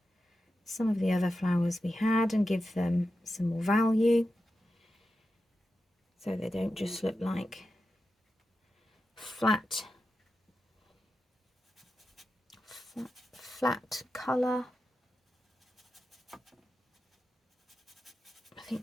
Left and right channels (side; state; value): both; normal; correlation 0.90